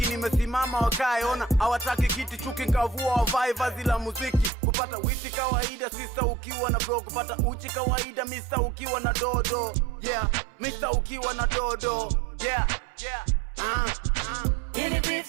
Nimesimama wakae ona hawataki kiti. Chuki nkavua wavae vazi la muziki. Kupata wifi kawaida sister ukiwa na bro. Kupata uchi kawaida mister ukiwa na dodo. Yeah, mister ukiwa na dodo. Yeah, yeah. Ini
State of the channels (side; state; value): left; drops out; at 4.5 s